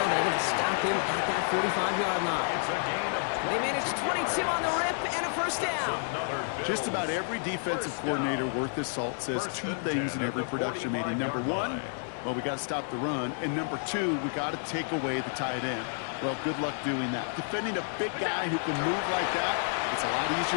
They're going to stop him at that 45-yard line. They managed 22 on the rip and a first down. Just about every defensive coordinator worth his salt says two things in every production meeting. Number one, well, we got to stop the run. And number two, we got to take away the tight end. Well, good luck doing that. Defending a big guy who can move like that, it's a lot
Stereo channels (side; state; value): right; silent; 58 dB below the other